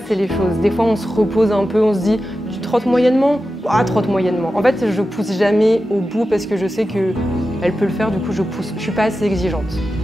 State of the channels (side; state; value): both; normal; correlation 0.92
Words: les choses. Des fois, on se repose un peu, on se dit « tu trottes moyennement ?» Ah, trotte moyennement. En fait, je pousse jamais au bout parce que je sais qu'elle peut le faire, du coup, je pousse. Je suis pas assez exigeante.